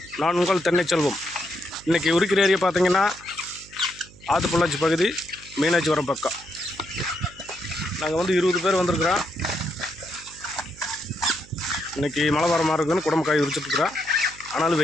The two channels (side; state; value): right; noise; hum, 23 dB below the sound